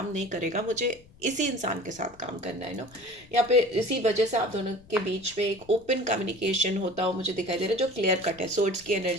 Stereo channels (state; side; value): noise; left; rumble, 26 dB below the sound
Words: नहीं करेगा, मुझे इसी इंसान के साथ काम करना है, यहाँ पे इसी वजह से आप दोनों के बीच में एक ओपन कम्युनिकेशन होता हो मुझे दिखाई दे रहा है, जो क्लियर कट है। सोर्ड्स की